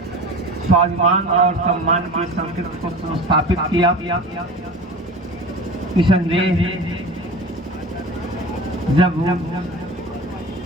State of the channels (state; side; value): normal; both; correlation 0.35